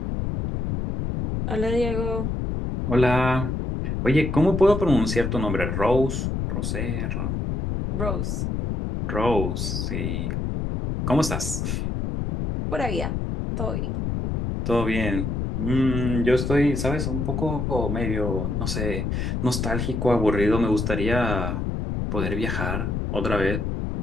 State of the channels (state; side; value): noise; left; rumble, 1 dB below the sound